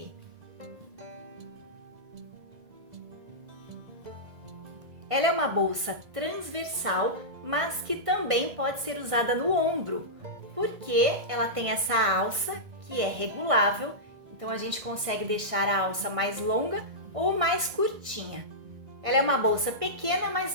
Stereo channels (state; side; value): late; left; 1.6 ms